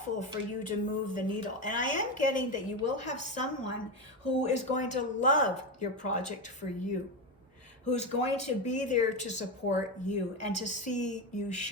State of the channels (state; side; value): normal; both; correlation 0.14